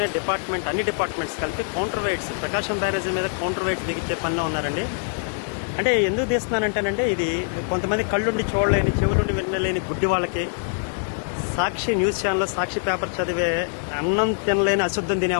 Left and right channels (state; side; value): silent; right; 63 dB below the other